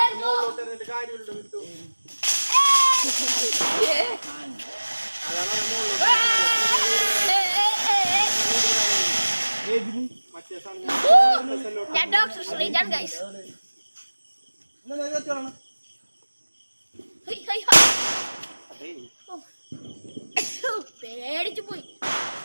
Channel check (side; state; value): both; inverted; correlation -1.00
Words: ഞാൻ ഡോക്ടർ ശ്രീജാൻ ഗൈസ്. പേടിച്ചു പോയി.